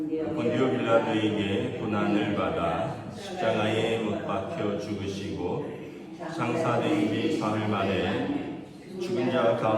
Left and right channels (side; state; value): both; identical; correlation 1.00